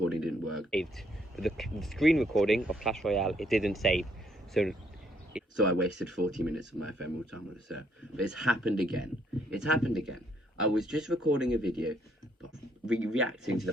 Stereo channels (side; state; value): both; normal; correlation 0.69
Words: didn't work. The screen recording of Clash Royale, it didn't save. So I wasted 40 minutes of my ephemeral time on the server. But it's happened again. It's happened again. I was just recording a video reacting to